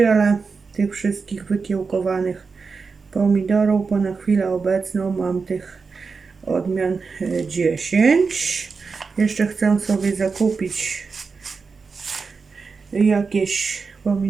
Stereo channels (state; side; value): quieter; left; 4.8 dB